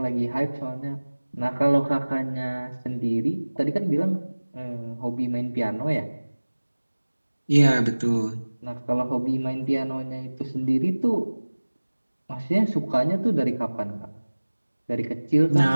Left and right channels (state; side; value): inverted; both; correlation -1.00